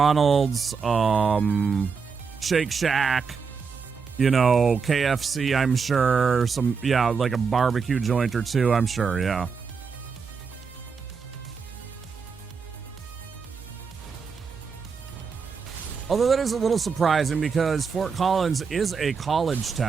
Shake Shack, you know, KFC, I'm sure. Like a barbecue joint or two, I'm sure, yeah. Although that is a little surprising because Fort Collins is a college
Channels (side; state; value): left; quieter; 5.6 dB